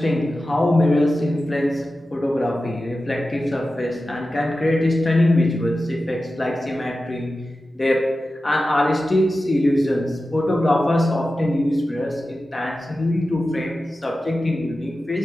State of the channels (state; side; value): normal; both; correlation 0.93